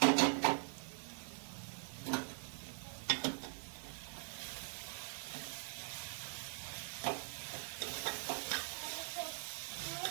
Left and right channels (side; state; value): left; silent; digital silence